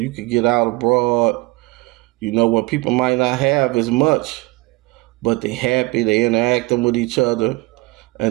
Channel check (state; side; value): quieter; left; 22.7 dB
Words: could get out abroad, when people might not have as much, but they happy, they interacting with each other,